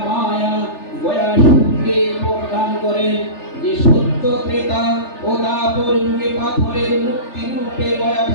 গয়াসুরকে বরদান করেন যে সত্য ত্রেতা ও তারপর যুগে পাথরের মূর্তি রূপে গয়া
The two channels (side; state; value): right; late; 3.4 ms